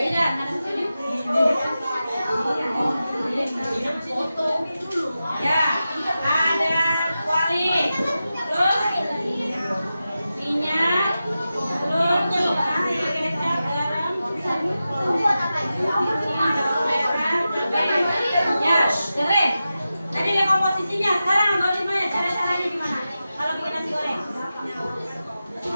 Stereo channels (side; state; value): both; inverted; correlation -0.92